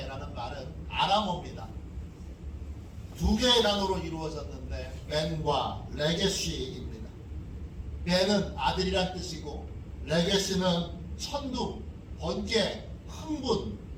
말은 아람어입니다. 두 개의 단어로 이루어졌는데 벤과 레게시입니다. 벤은 아들이란 뜻이고 레게시는 천둥, 번개, 흥분,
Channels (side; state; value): both; identical; correlation 1.00